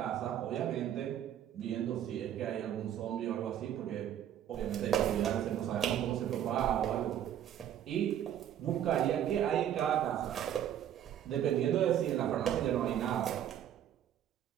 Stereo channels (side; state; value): left; quieter; 10.5 dB